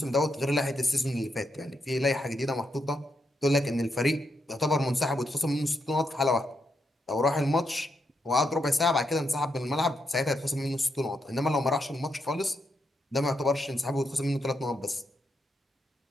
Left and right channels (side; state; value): both; normal; correlation 0.81